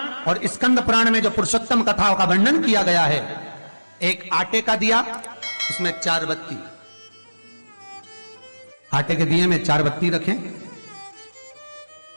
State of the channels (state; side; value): inverted; both; correlation -1.00